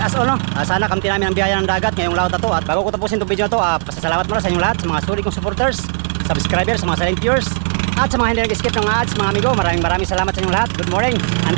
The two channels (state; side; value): silent; left; digital silence